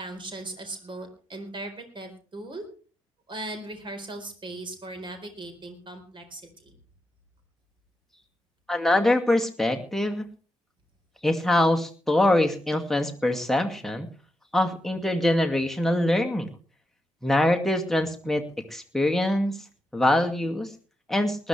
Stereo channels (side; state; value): both; normal; correlation 0.87